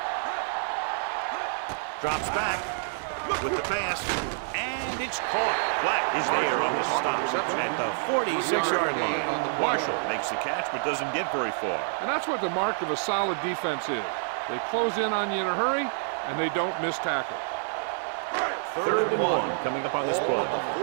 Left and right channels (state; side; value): silent; left; digital silence